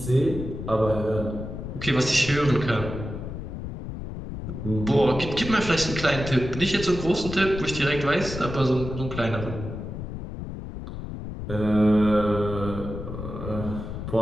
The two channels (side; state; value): left; noise; rumble, 8 dB below the sound